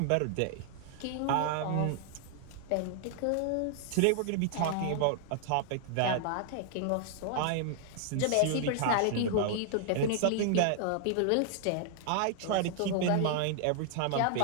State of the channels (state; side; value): different; both; correlation -0.01